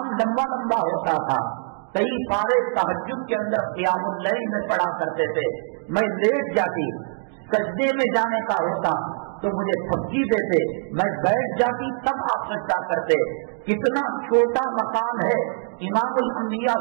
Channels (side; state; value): left; silent; digital silence